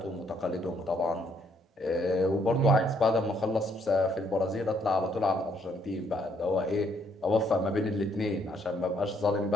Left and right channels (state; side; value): normal; both; correlation 0.69